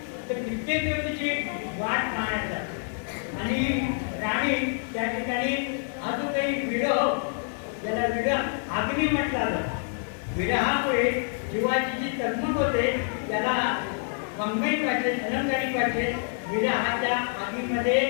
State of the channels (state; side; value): silent; right; 60 dB below the other